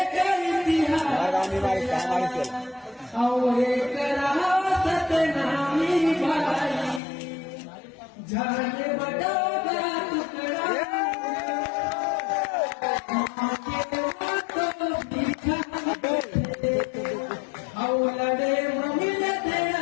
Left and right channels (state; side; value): drops out; right; at 7.0 s